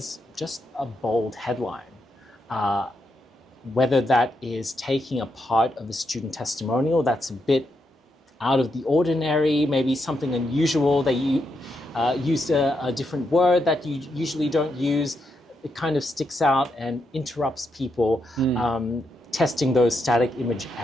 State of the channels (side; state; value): both; normal; correlation 0.82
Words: just a bold headline. Whether that is taking a part of a student testimonial that's a bit out of the ordinary, maybe something unusual, that you used a different word that you usually don't use, it kind of sticks out and interrupts people testing those static image